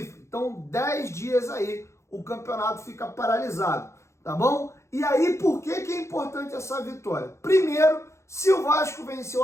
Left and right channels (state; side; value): late; right; 0.14 ms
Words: Então 10 dias aí o campeonato fica paralisado, tá bom? E aí por que é importante essa vitória? Primeiro, se o Vasco vencer o